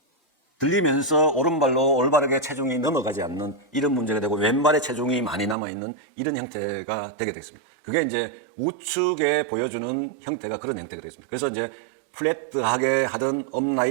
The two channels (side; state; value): left; drops out; at 5.6 s